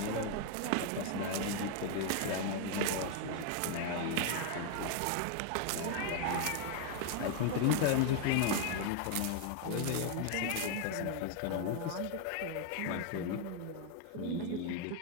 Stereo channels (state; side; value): different; both; correlation 0.01